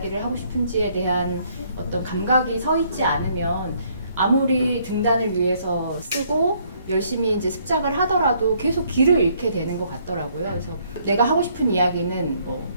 하고 싶은지에 대한 어떤 감각이 서 있지 않으면 아무리 등단을 위해서 쓰고 열심히 이제 습작을 하더라도 계속 길을 잃게 되는 것 같더라고요. 그래서 내가 하고 싶은 이야기는 뭐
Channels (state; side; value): inverted; both; correlation -0.67